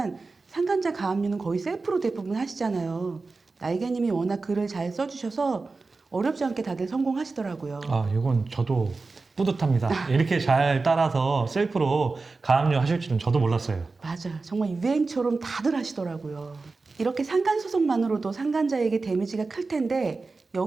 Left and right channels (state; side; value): quieter; left; 3.9 dB